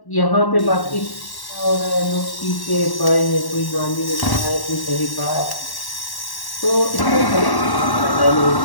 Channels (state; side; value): late; right; 1.1 ms